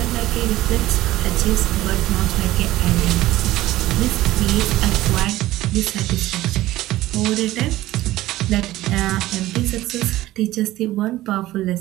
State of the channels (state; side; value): quieter; left; 16.2 dB